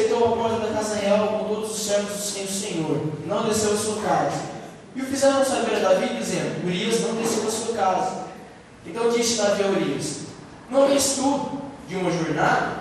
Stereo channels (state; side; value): identical; both; correlation 1.00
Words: à porta da casa real com todos os servos do Senhor, e não desceu a sua casa. E o fizeram saber a Davi, dizendo: Urias não desceu a sua casa. Então disse Davi a Urias: não vês tu de uma